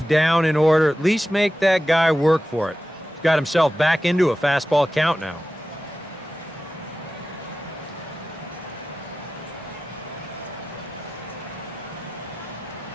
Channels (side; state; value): both; normal; correlation 0.94